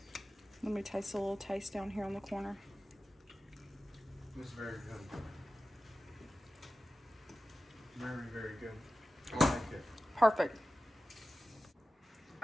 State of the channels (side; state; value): both; normal; correlation 0.95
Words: Let me taste a little taste down here on the corner. It's very good. Very, very good. I like it. Perfect.